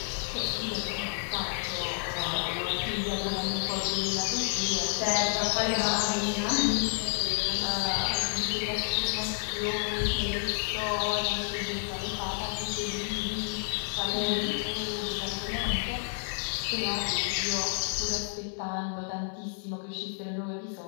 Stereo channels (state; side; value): silent; right; 58 dB below the other